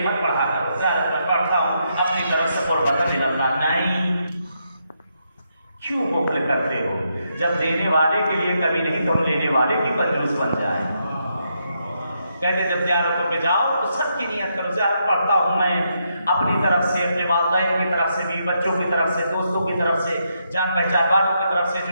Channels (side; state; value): both; inverted; correlation -0.80